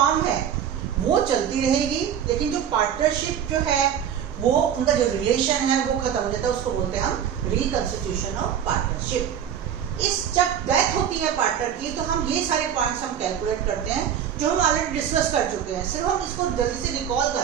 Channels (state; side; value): quieter; left; 9.0 dB